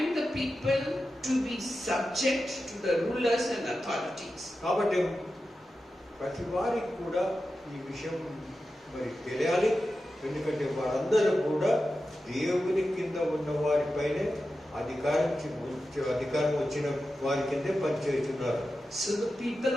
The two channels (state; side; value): normal; both; correlation 0.92